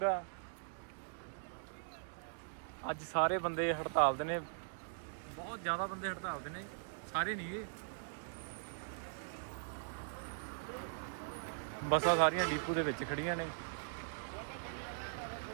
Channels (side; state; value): left; silent; digital silence